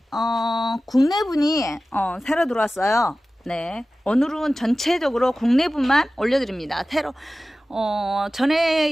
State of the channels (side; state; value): both; normal; correlation 0.96